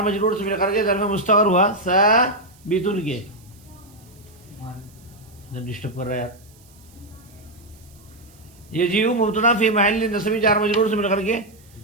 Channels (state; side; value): noise; right; hiss, 28 dB below the sound